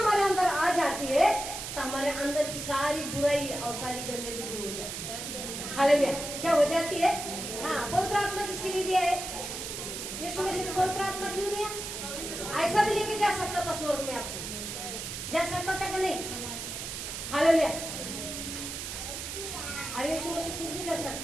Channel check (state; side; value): noise; right; hiss, 6 dB below the sound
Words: अंदर आ जाती है तो हमारे अंदर की सारी बुराई और सारी गंदगी दूर हो जाती है। हालेलुया। क्या हो जाती है? हाँ, पवित्र आत्मा किसके लिए दिया है? यीशु मसीह ने पवित्र आत्मा क्यों दिया? ऐसा भी लेके जा सकता था स्वर्ग में, आपको जा सकता था कि नहीं? हालेलुया। अरे यीशु मसीह कुछ भी कर